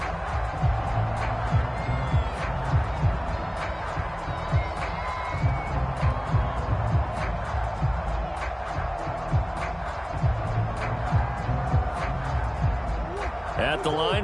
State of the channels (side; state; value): both; identical; correlation 1.00